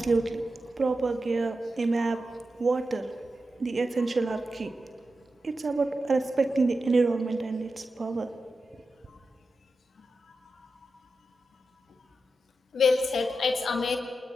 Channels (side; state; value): both; normal; correlation 0.90